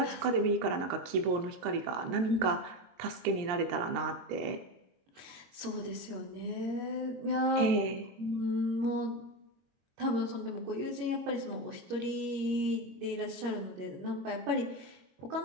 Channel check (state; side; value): late; left; 23 ms